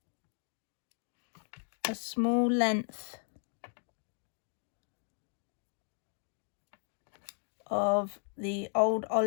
a small length of the old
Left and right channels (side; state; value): right; silent; 54 dB below the other